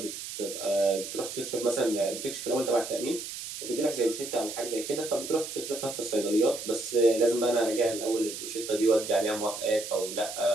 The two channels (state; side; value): noise; right; hiss, 8 dB below the sound